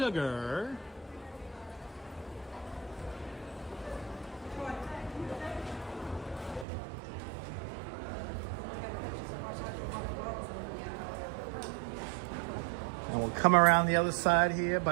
And we'll come around the other side here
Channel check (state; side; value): drops out; left; at 6.7 s